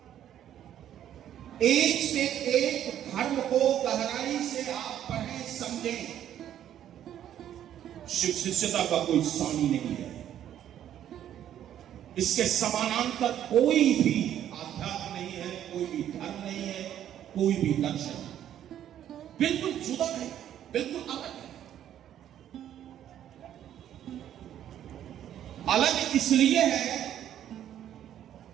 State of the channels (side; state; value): left; quieter; 10.8 dB